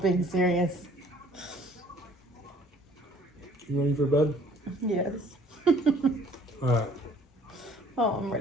serious. You ready for bed? Yes. Alright, Oh, I'm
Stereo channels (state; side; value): normal; both; correlation 0.56